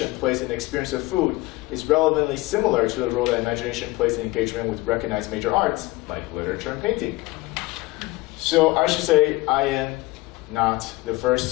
plays in the experience of food is relevantly similar to the role that imagination plays in engagement with recognized major arts, like literature and painting. So I should say I am not the first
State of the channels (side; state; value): right; quieter; 20.8 dB